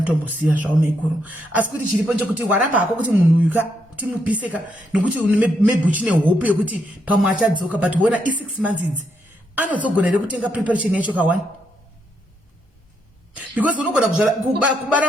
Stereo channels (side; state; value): both; normal; correlation 0.78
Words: zvavo maiguru asi kuti chiripo nchekuti waramba hako kuti munhu uyu kuti mupiseka nokuti maybe uchine hope yekuti pamwe achadzoka but wona i6 months idzi anodzogona here kutenga preparation yacho ka1 because unogona